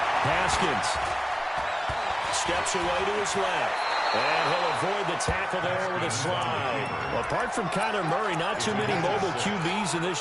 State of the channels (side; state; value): both; identical; correlation 1.00